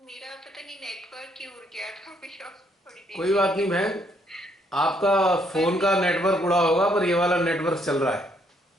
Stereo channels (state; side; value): normal; both; correlation 0.70